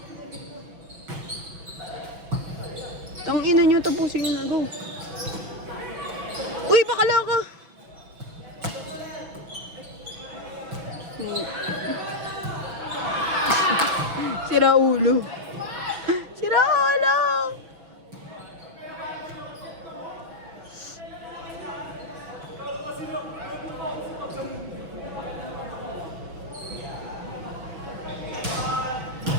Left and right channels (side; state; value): left; late; 6.1 ms